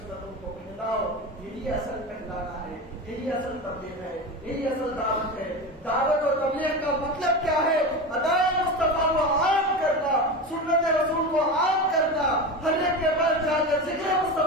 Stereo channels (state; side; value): normal; both; correlation 0.24